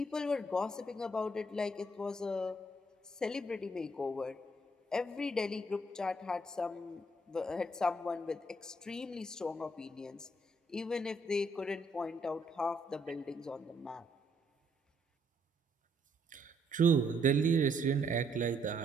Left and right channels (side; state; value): both; normal; correlation 0.70